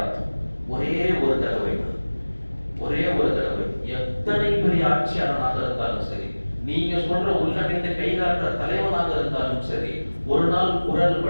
ஒரே ஒரு தடவை. எத்தனை பெரிய ஆட்சியாளனாக இருந்தாலும் சரி, நீங்க சொல்ற உள்ளிட்ட கைகாட்டுற தலைவனாக இருந்தாலும் சரி, ஒரு நாள் குரல்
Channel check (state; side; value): inverted; both; correlation -1.00